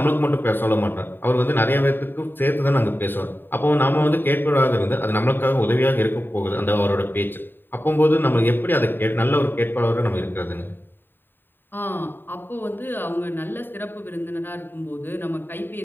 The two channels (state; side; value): late; right; 0.095 ms